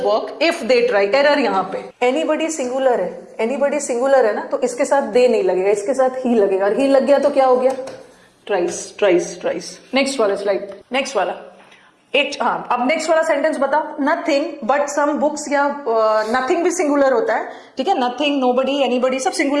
work if they try. Error यहाँ पे, एनीबडी सिंगुलर है, एनीबडी सिंगुलर है ना, तो इसके साथ दे नहीं लगेगा, इसके साथ ही लगेगा, और ही लग गया तो क्या हो गया, ट्राइस, ट्राइस, ट्राइस। नेक्स्ट वाला स्लाइड, नेक्स्ट वाला एक, हाँ, अब नेक्स्ट वाला सेंटेंस बताओ। नथिंग बट सम बुक्स, या नथिंग भी सिंगुलर होता है, ठीक है, नथिंग, नोबडी, एनीबडी सब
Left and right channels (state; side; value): identical; both; correlation 1.00